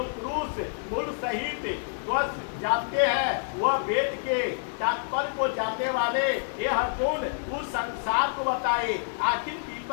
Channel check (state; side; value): silent; right; digital silence